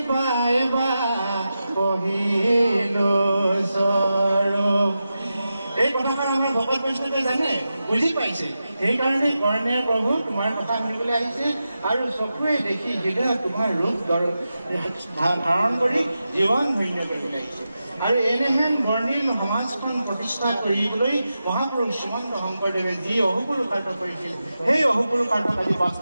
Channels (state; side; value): inverted; both; correlation -0.91